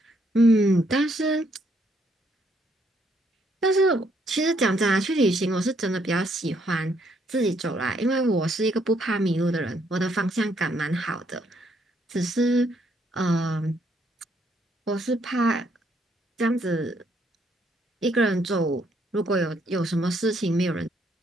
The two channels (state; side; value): normal; both; correlation 0.71